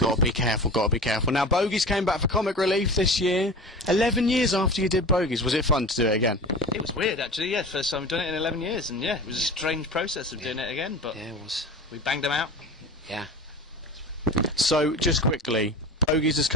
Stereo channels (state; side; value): normal; both; correlation 0.34